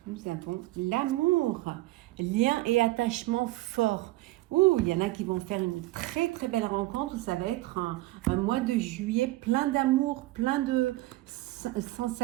nous avons l'amour, lien et attachement fort. Ouh, il y en a qui vont faire une très très belle rencontre. Ça va être un mois de juillet plein d'amour, plein de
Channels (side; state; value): left; quieter; 18.6 dB